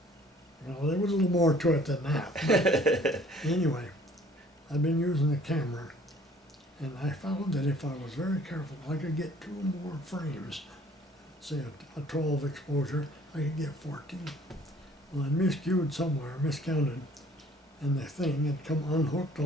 Well, there was a little more to it than that. Anyway, I've been using the camera, and I found that if I was very careful, I could get 2 more frames. Say a 12 exposure, I could get 14. Well, I miscued somewhere, miscounted, and the thing had come unhooked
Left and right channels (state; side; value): normal; both; correlation 0.56